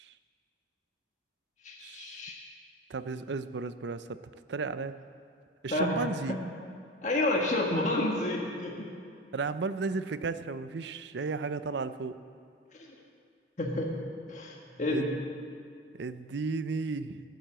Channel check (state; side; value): normal; both; correlation 0.27